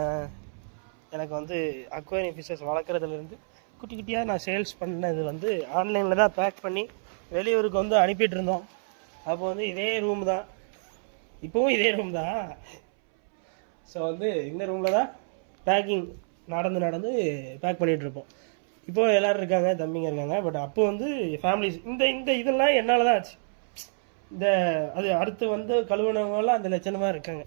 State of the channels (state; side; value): silent; left; 60 dB below the other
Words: எனக்கு வந்து அக்வேரியம் ஃபிஷஸ் வளர்க்குறதுலேருந்து குட்டி குட்டியாக நான் சேல்ஸ் பண்ணது வந்து ஆன்லைனில் தான் பேக் பண்ணி வெளியூருக்கு வந்து அனுப்பிட்டு இருந்தோம். அப்போ வந்து இதே ரூம் தான், இப்போவும் இதே ரூம் தான். ஸோ வந்து இந்த ரூமில் தான் பேக்கிங் நடந்து பேக் பண்ணிகிட்ருப்போம். இப்போது எல்லோரும் இருக்காங்க, தம்பிங்க இருக்காங்க. பட் அப்போ வந்து ஃபேமிலிஸ் இந்த இதெல்லாம் என்னால் தான் ஆச்சு. அது அடுத்து வந்து கழுவுனவங்களாம் அந்த லட்சணமாக இருக்காங்க.